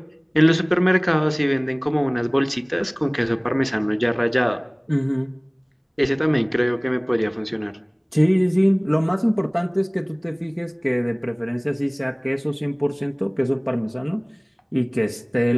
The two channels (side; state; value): both; identical; correlation 1.00